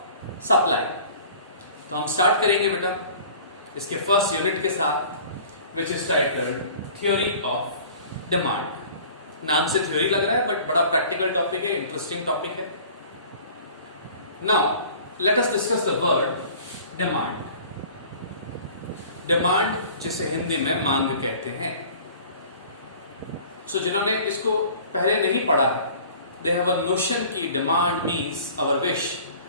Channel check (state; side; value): inverted; both; correlation -0.47